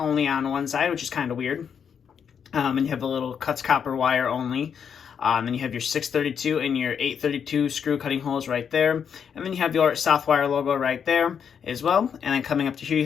on one side, which is kind of weird. And you have the little cuts copper wire only. Then you have your 632 and your 832 screw cutting holes right there. And then you have your Southwire logo right there as well. And then coming up to here, you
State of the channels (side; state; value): right; quieter; 7.4 dB